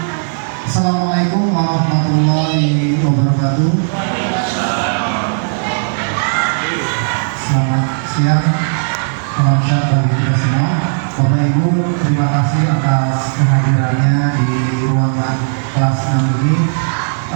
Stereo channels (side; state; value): left; silent; digital silence